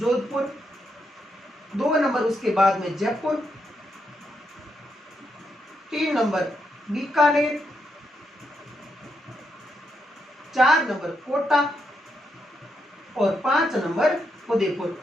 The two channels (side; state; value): both; normal; correlation 0.81